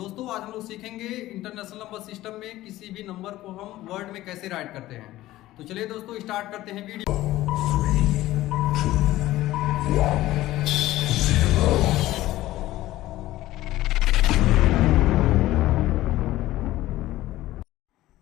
आज हम लोग सीखेंगे इंटरनेशनल नंबर सिस्टम में किसी भी नंबर को हम वर्ड में कैसे राइट करते हैं। तो चलिए दोस्तों, स्टार्ट करते हैं वीडियो।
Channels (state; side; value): quieter; right; 16.0 dB